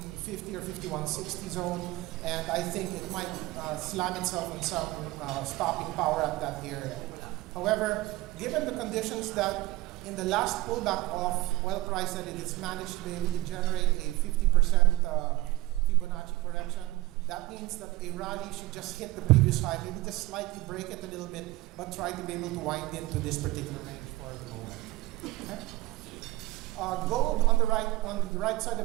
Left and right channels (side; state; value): left; quieter; 18.7 dB